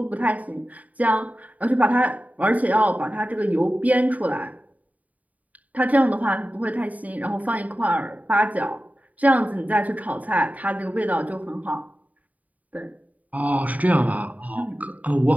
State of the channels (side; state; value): left; late; 0.072 ms